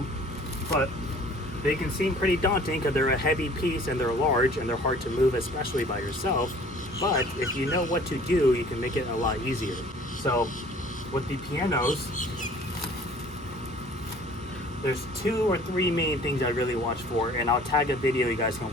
But they can seem pretty daunting because they're a heavy piece and they're large and they're hard to move, especially by yourself. But if you know what to do, you can make it a lot easier. So with the pianos, there's 2 or 3 main things I really watch for, and I'll tag a video you guys can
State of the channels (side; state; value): both; normal; correlation 0.51